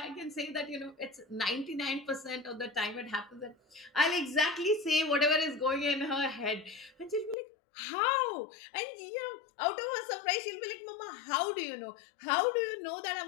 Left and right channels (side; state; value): right; drops out; at 7.4 s